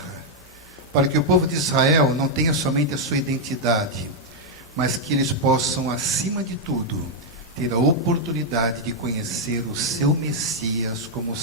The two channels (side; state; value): both; normal; correlation -0.02